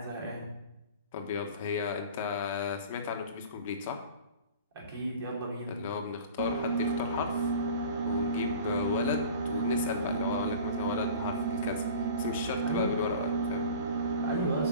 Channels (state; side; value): inverted; both; correlation -0.40